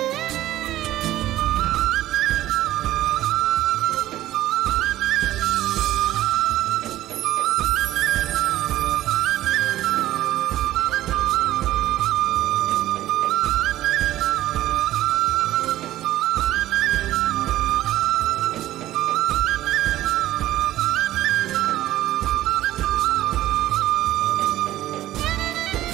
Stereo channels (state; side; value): quieter; left; 14.4 dB